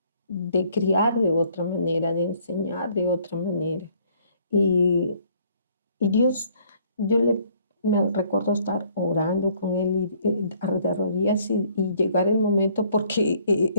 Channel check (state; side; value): inverted; both; correlation -0.62